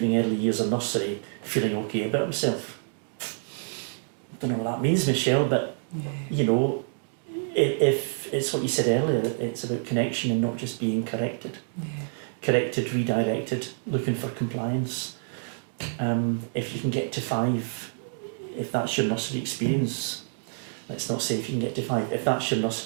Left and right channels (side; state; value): left; silent; digital silence